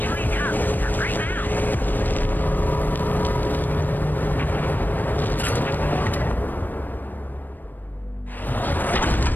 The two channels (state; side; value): late; right; 0.090 ms